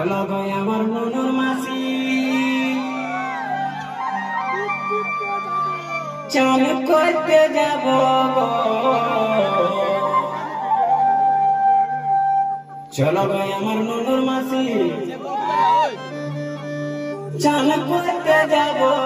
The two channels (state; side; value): identical; both; correlation 1.00